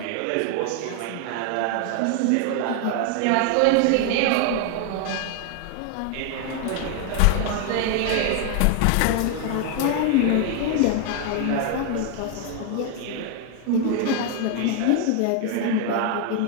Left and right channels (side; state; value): both; different; correlation 0.00